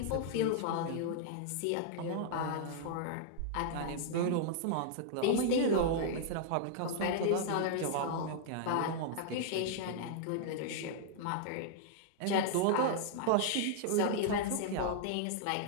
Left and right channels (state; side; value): different; both; correlation -0.01